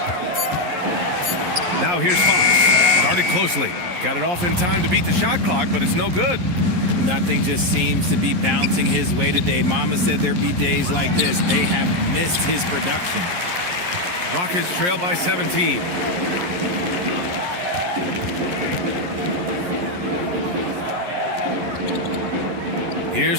Now here's Fox. Guarded closely. Got it off in time to beat the shot clock, but it's no good. Nothing just seems to be bouncing his way today. Mama said there'd be days like this. They have missed his production. Rockets trail by 17.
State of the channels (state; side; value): late; left; 11 ms